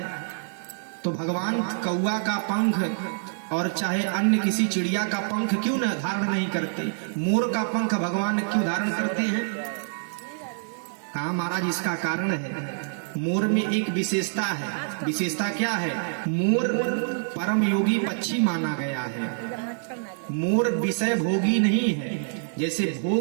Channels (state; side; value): silent; left; digital silence